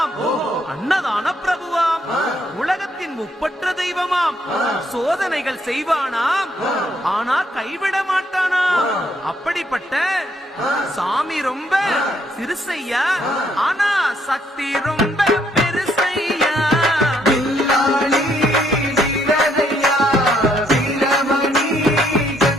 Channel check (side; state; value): both; normal; correlation 0.71